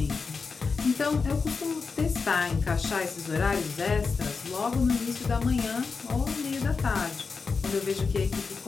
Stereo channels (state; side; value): quieter; right; 4.8 dB